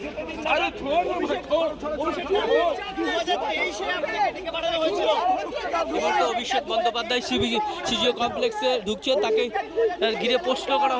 অভিষেক বন্দ্যোপাধ্যায় সিজিও কমপ্লেক্সে ঢুকছে, তাকে ঘিরে প্রশ্ন করা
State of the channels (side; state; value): both; identical; correlation 1.00